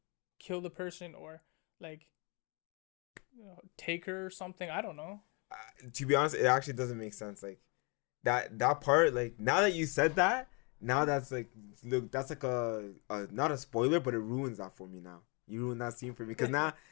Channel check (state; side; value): quieter; right; 32.9 dB